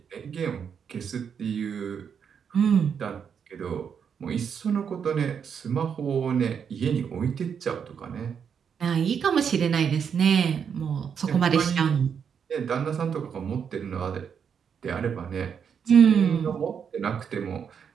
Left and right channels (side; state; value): left; quieter; 7.2 dB